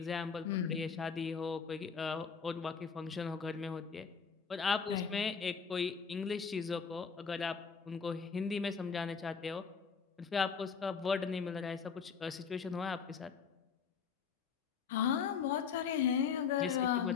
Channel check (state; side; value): quieter; right; 6.0 dB